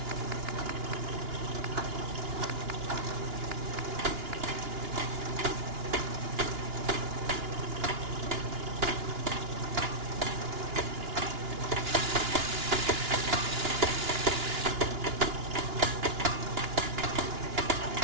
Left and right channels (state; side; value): late; left; 2.9 ms